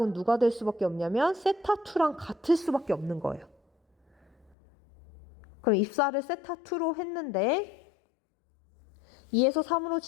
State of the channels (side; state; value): right; drops out; at 4.5 s